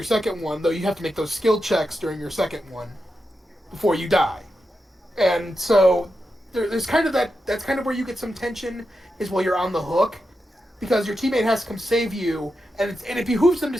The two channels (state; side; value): normal; both; correlation 0.88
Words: 2nd one, though you have to make those skill checks during your 2nd one before you die. And so there's kind of that's kind of where you get some tension is while you're on the hook, because your teammate has to come save you, and it behooves them to